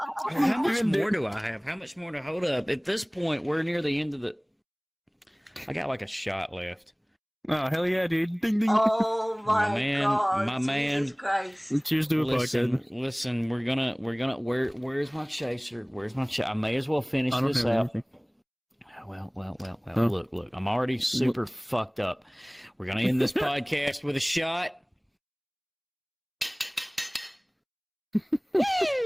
How much more do I have? How much more to hold up? At this point, we're near the end of the. I got like a shot left. Oh hell yeah, dude! Ding ding. Oh my God! My Jesus man. Christ! Cheers to a podcast. Listen. We're gonna. Where's my chaser? Where's my chaser? I may as well finish I don't this have out. anything. Well. Oh. Look. I'm already super fucked up. We're gonna end this podcast with a shot.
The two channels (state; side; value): identical; both; correlation 1.00